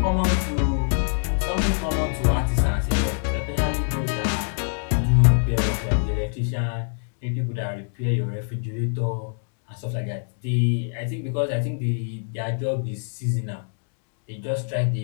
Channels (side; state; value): right; silent; digital silence